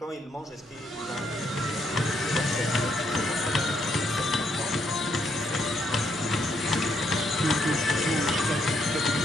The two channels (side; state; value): both; normal; correlation 0.74